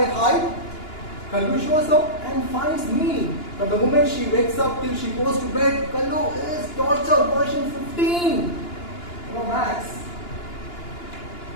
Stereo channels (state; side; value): late; right; 2.9 ms